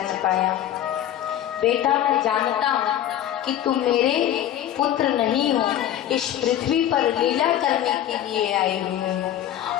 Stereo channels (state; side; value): quieter; right; 11.5 dB